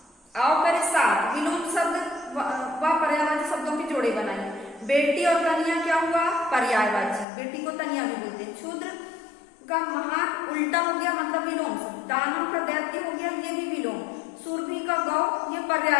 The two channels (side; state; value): right; drops out; at 7.2 s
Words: आओ करे सात, विलोम शब्द व पर्यायवाची शब्दों के जोड़े बनाइए। बेटी और तनिया क्या हुआ पर्यायवाची, बेटी को तनिया भी बोलते हैं। क्षुद्र का महान उल्टा हो गया मतलब विलोम शब्द। दानव का दैत्य हो गया ये भी विलोम। सुरभि का गौ ये